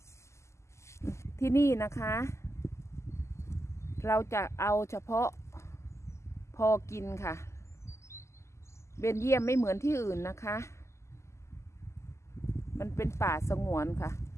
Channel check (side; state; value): right; late; 0.13 ms